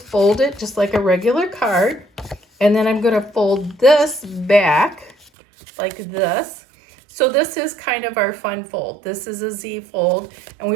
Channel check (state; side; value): drops out; left; at 5.3 s